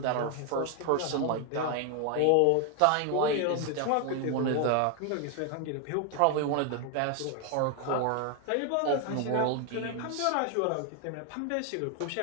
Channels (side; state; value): both; different; correlation 0.01